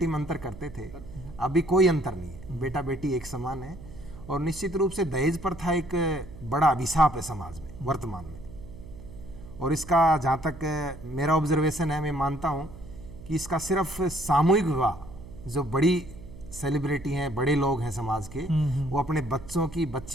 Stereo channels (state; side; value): noise; right; hum, 15 dB below the sound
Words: में अंतर करते थे, अभी कोई अंतर नहीं है, बेटा बेटी एक समान है। और निश्चित रूप से दहेज प्रथा एक बड़ा अभिशाप है समाज में वर्तमान में, और इसका जहाँ तक मेरा ऑब्जर्वेशन है, मैं मानता हूँ कि इसका सिर्फ सामूहिक विवाह, जो बड़ी सेलिब्रिटी हैं, बड़े लोग हैं समाज के, वो अपने